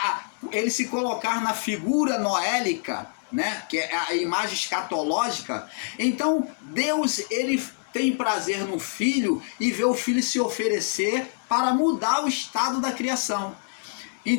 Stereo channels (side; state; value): right; silent; digital silence